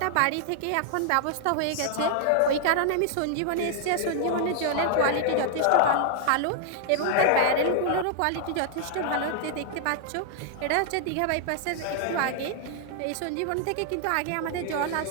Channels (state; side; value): different; both; correlation 0.00